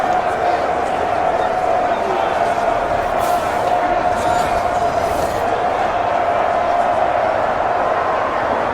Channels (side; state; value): both; identical; correlation 1.00